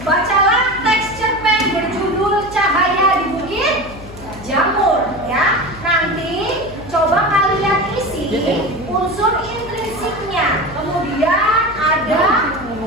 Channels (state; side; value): noise; left; hum, 16 dB below the sound